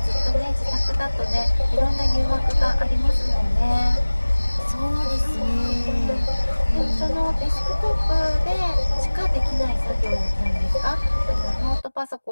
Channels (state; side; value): inverted; both; correlation -1.00